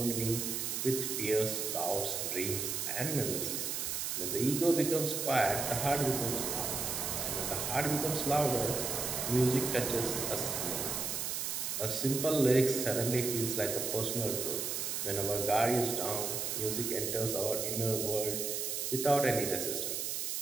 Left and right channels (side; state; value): right; noise; hiss, 2 dB below the sound